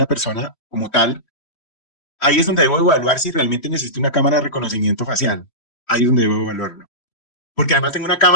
persona como tal. Ahí es donde debo evaluar si realmente necesito una cámara de reconocimiento facial. Ahí es donde debo evaluarlo. Porque además tengo una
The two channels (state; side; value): late; right; 3.1 ms